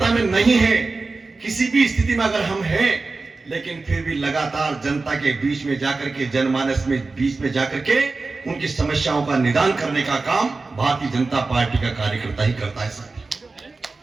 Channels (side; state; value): left; quieter; 3.8 dB